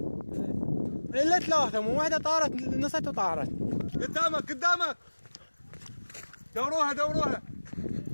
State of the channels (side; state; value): both; inverted; correlation -1.00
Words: الا ثلاثة مو واحدة طارت نصت وطارت قدامك دوروها